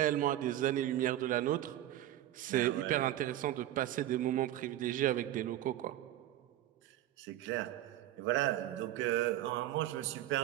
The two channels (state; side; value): quieter; left; 13.4 dB